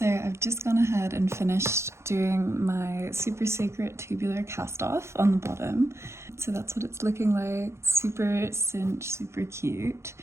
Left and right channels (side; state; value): left; late; 0.13 ms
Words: I've just gone ahead and finished doing my super secret tubular cast off on the bottom. So that's what it's looking like, super cinched, super cute.